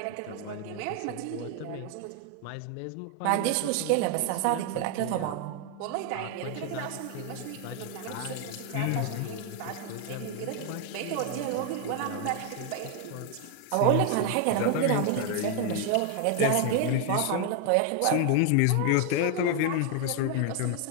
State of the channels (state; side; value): different; both; correlation 0.00